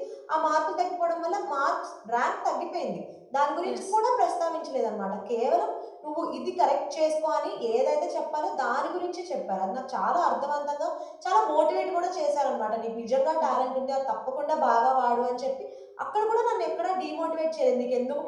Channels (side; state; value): both; identical; correlation 1.00